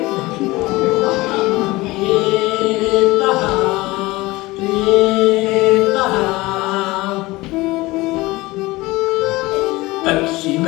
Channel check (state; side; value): quieter; right; 20.7 dB